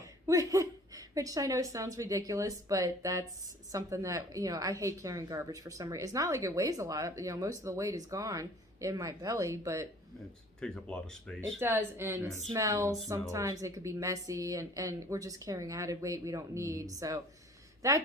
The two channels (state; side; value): normal; both; correlation 0.51